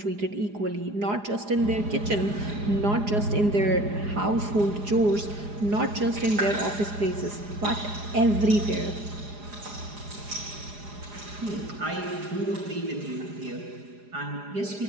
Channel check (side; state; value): left; late; 4.9 ms